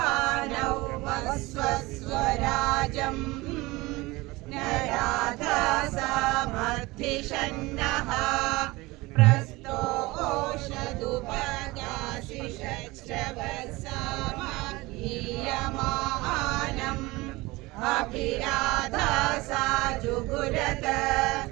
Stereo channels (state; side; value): quieter; left; 21.6 dB